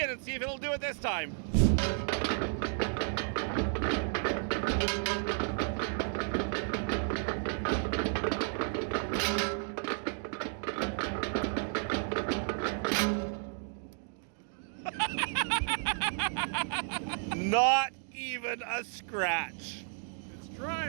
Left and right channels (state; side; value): silent; left; 56 dB below the other